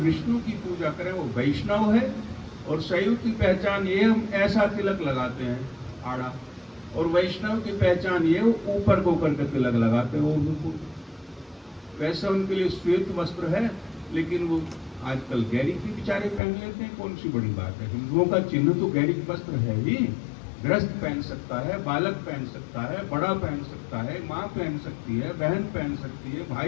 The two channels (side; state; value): right; drops out; at 16.4 s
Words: की पूजा करें, वो वैष्णव है। और शैव की पहचान ये, हम ऐसा तिलक लगाते हैं आड़ा, और वैष्णव की पहचान ये ऊपर को करके तिलक लगाते हैं, वो बिल्कुल वैसा उनके लिए श्वेत वस्त्र है, लेकिन वो आजकल गैरी की बेचारे पहन लेते हैं, कौन सी बड़ी बात है। हिंदुओं का चिन्ह तो गैरी वस्त्र है ही। गृहस्थ पहन सकता है, बालक पहन सकता है, बड़ा पहन सकता है, माँ पहन सकती है, बहन पहन सकती है,